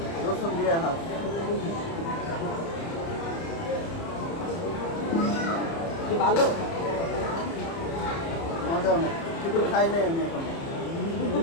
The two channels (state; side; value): late; right; 30 ms